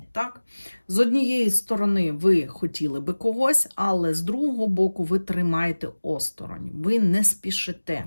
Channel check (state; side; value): inverted; both; correlation -1.00